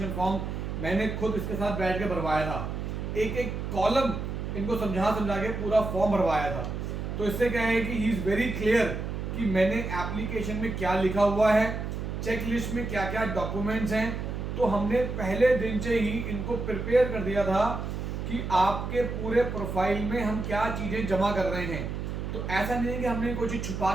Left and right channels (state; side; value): noise; right; hum, 4 dB below the sound